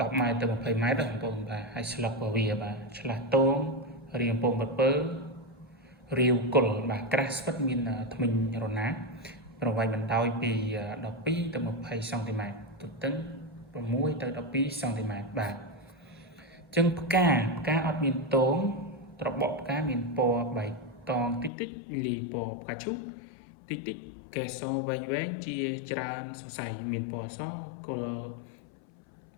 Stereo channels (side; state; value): right; drops out; at 21.5 s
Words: ម៉ែត្រទៅ20ម៉ែត្របងប្អូនបាទហើយស្លឹករបស់វាបាទឆ្លាស់តងរាងពងពើរាវគល់បាទក្រាស់ស្វិតមានធ្មេញរណាប្រវែងបណ្ដោយពី12ទៅ20សង់ទីម៉ែត្រទទឹង6ទៅ12សង់ទីម៉ែត្របាទអញ្ចឹងផ្កាអត់មានតងត្របកផ្កាមានពណ៌បៃតងតិចលីពណ៌ផ្កាឈូកតិចកែសវែងជាច្រើនសរសៃមានពណ៌សគ